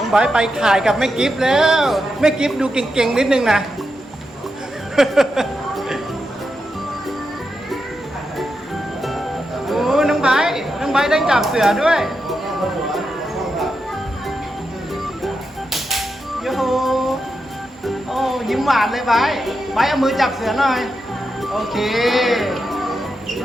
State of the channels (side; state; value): both; normal; correlation 0.87